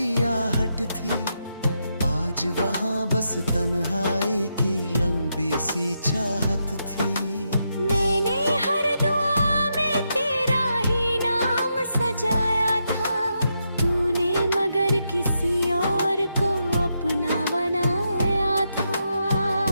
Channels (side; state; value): both; inverted; correlation -0.83